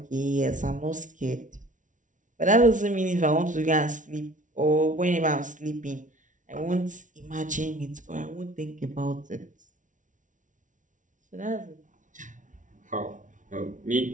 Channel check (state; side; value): late; left; 0.37 ms